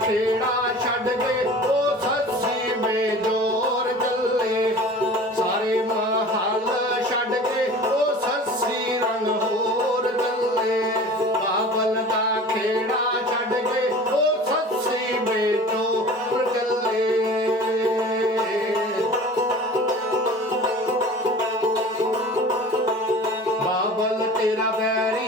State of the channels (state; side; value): normal; both; correlation 0.40